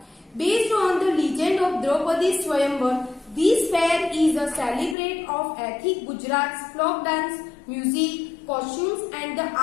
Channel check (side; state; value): right; drops out; at 5.0 s